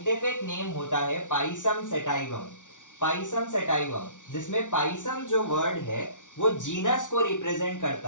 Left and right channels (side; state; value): right; late; 0.87 ms